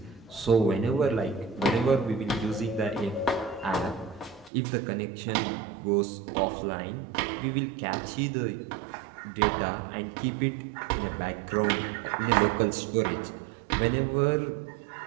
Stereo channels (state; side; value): drops out; left; at 4.5 s